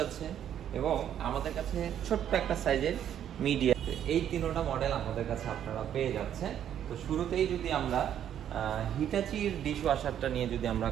আছে এবং আমাদের কাছে ছোট্ট একটা সাইজের মিডিয়া। এই তিনটা মডেল আমাদের কাছে আপনারা পেয়ে যাচ্ছেন। তো শুরুতেই যদি আমরা হিটাচির ডিশ ওয়াশারটা নিয়ে যদি আমরা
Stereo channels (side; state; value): left; quieter; 10.0 dB